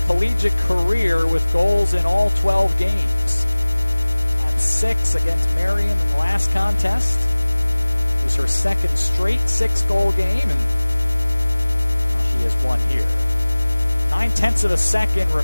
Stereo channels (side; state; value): both; inverted; correlation -1.00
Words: collegiate career with goals in all 12 games. Had 6 against Marion in the last contest. It was her second straight 6-goal game, and now she has one here. 9/10 of a second